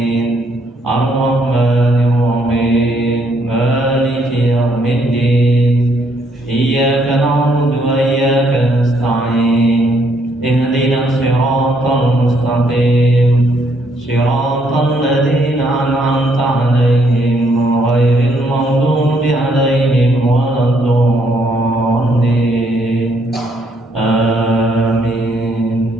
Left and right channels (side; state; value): both; normal; correlation 0.71